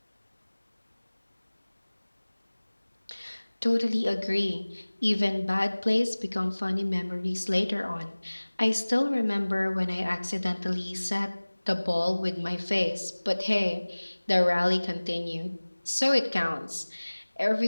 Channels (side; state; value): both; inverted; correlation -1.00